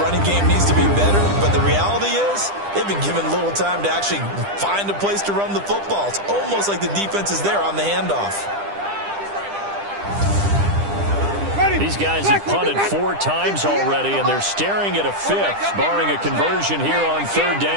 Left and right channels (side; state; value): left; late; 10 ms